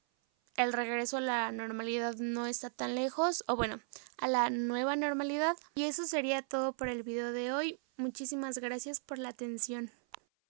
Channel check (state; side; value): silent; left; 54 dB below the other